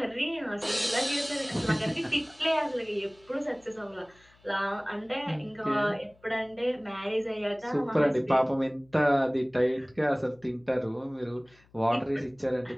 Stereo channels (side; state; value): left; noise; hum, 30 dB below the sound